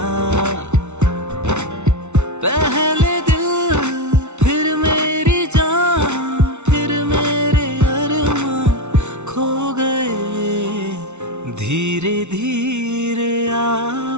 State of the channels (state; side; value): late; left; 0.82 ms